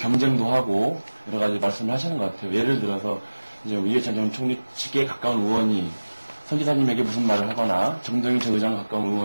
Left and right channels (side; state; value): both; inverted; correlation -1.00